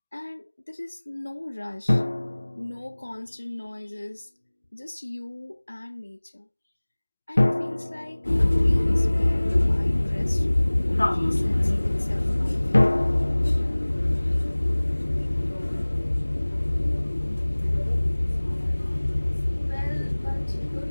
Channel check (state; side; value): inverted; both; correlation -1.00